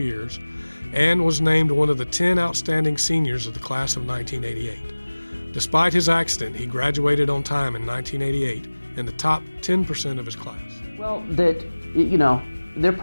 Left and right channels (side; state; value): both; inverted; correlation -1.00